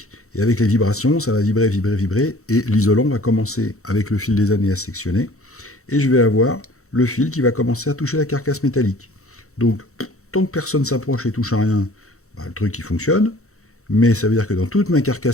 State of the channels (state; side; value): late; right; 0.64 ms